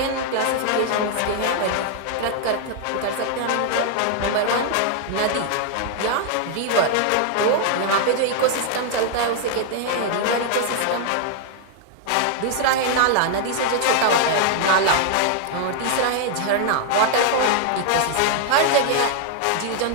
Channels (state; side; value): different; both; correlation 0.00